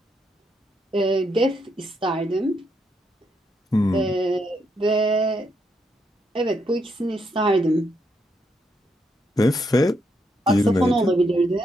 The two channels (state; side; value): normal; both; correlation 0.78